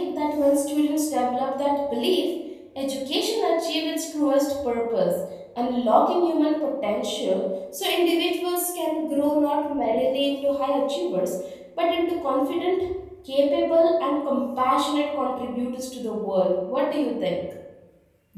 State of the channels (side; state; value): both; identical; correlation 1.00